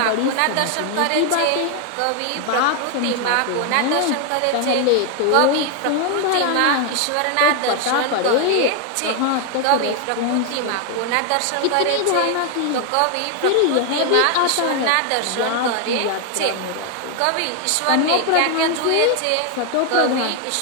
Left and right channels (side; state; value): both; different; correlation 0.01